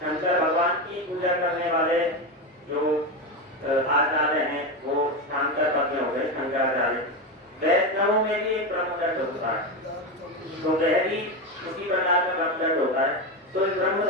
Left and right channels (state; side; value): normal; both; correlation 0.15